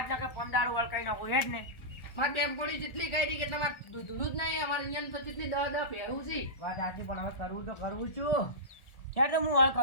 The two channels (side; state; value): right; late; 1.4 ms